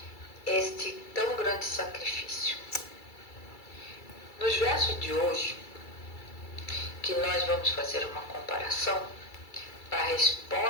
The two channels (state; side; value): late; right; 2.3 ms